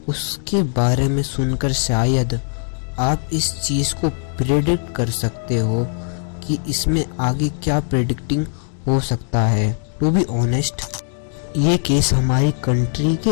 उसके बारे में सुनकर शायद आप इस चीज़ को प्रेडिक्ट कर सकते हो कि इसमें आगे क्या प्रेडिक्टिंग हो सकता है। टू बी ऑनेस्ट, ये केस हमारी कंट्री के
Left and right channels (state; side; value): silent; right; digital silence